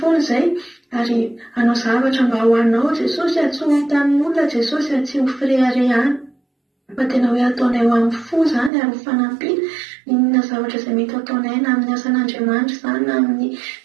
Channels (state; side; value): drops out; left; at 8.7 s